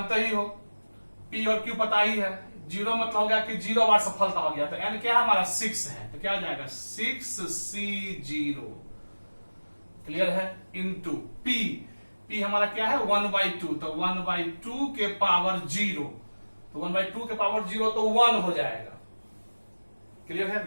ही हो, पी और क्यू पता ही है। 0 मतलब हो गया कि 0 बार सफलता हो गया, तो n क्या हमारा 6 है, तो क्या हो जाएगा 6C0। क्लियर है? इनटू p हमारा क्या है 1/2, तो 1/2 के पावर 0, तो 1/2 के पावर 0 तो 1 हो जाएगा। क्लियर है?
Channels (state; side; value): inverted; both; correlation -1.00